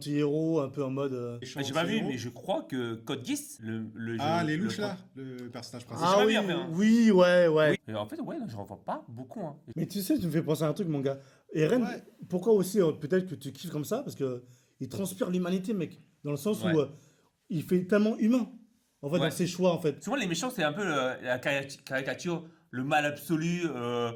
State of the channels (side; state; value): both; identical; correlation 1.00